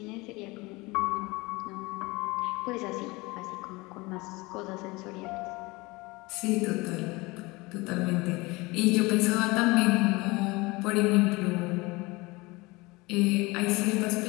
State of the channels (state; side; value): quieter; right; 23.5 dB